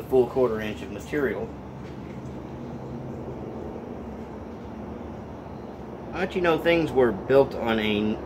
full 1/4 inch of material. But you know, things were built on a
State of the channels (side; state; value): both; identical; correlation 1.00